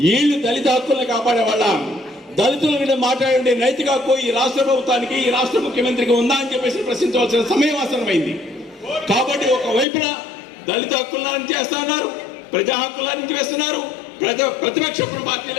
వీళ్ళు దళిత హక్కులను కాపాడే వాళ్ళ దళితుల మీద మాట్లాడే నైతిక హక్కు ఈ రాష్ట్ర ప్రభుత్వానికి, ఈ రాష్ట్ర ముఖ్యమంత్రికి ఉందా అని చెప్పేసి ప్రశ్నించవలసిన సమయం ఆసన్నమైంది. కాబట్టి ఒకవైపున దళిత హక్కులను చేస్తా ఉన్నారు, ప్రజా హక్కుల నుంచి వేస్తున్నారు, ప్రతిపక్ష పార్టీల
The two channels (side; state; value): right; drops out; at 9.9 s